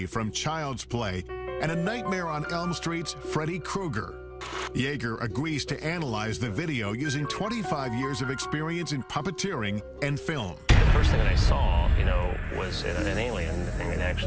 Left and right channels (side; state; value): both; identical; correlation 1.00